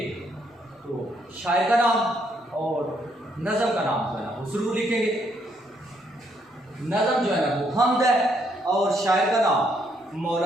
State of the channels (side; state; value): both; normal; correlation 0.72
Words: तो शायर का नाम और नज़म का नाम जो है ना वो ज़रूर लिखेंगे। नज़म जो है ना वो हमद है, और शायर का नाम